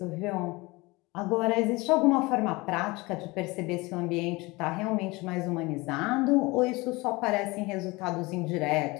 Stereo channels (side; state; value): right; quieter; 23.3 dB